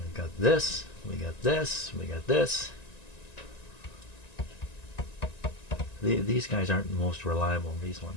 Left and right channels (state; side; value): late; right; 1.9 ms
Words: got this, we got this, we got this. These guys aren't the most reliable, these